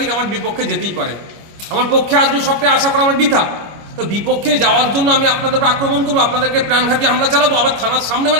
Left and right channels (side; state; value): left; late; 25 ms